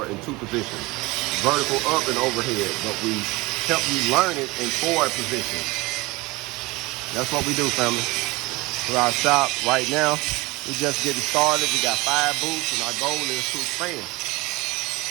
in 2 positions, vertical up and overhead, but we help you learn it in 4 positions. That's what we do, family. For our shop right now, we're just getting started. We got 5 booths, and our goal is to expand.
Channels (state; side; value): quieter; left; 22.2 dB